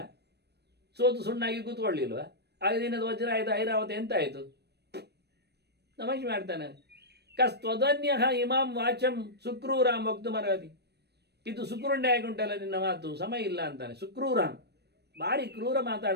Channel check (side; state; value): left; late; 0.48 ms